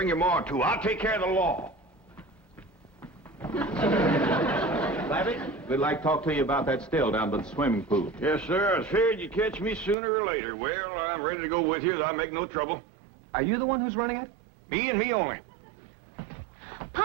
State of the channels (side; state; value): left; drops out; at 10.0 s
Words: your ma, too. I'll take care of the law. Savvy, we'd like to talk to you about that still down by the swimming pool. Yes, sir. I figured you'd catch me sooner or later. Well, I'm ready to go with you. I'll make no trouble. Are you the one who's running it? Me and me only.